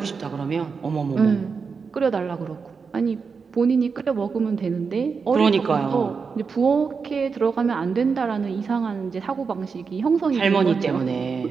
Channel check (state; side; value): quieter; left; 5.3 dB